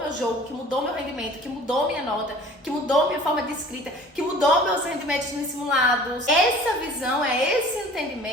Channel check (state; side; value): normal; both; correlation 0.47